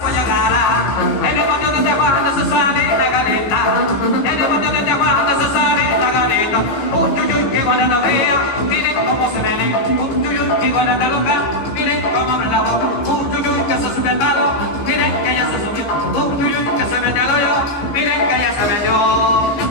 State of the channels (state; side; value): late; right; 15 ms